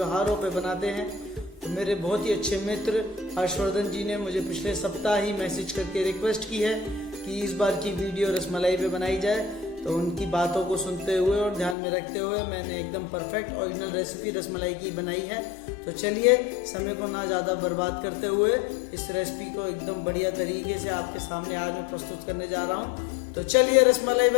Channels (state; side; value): drops out; right; at 11.8 s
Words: पे बनाते हैं। तो मेरे बहुत ही अच्छे मित्र हर्षवर्धन जी ने मुझे पिछले सप्ताह ही मैसेज करके रिक्वेस्ट की है कि इस बार की वीडियो रसमलाई पे बनाई जाए। तो उनकी बातों को सुनते हुए और ध्यान में रखते हुए मैंने एकदम परफेक्ट ओरिजिनल रेसिपी रसमलाई की बनाई है। तो चलिए समय को ना ज़्यादा बर्बाद करते हुए इस रेसिपी को एकदम बढ़िया तरीके से आपके सामने आज मैं प्रस्तुत करने जा रहा हूँ। तो चलिए रसमलाई